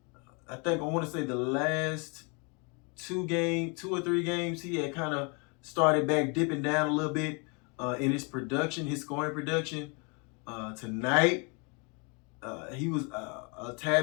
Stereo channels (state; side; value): quieter; right; 33.0 dB